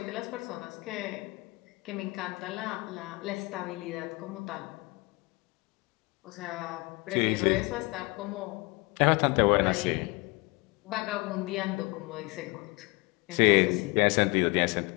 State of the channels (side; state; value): right; quieter; 26.0 dB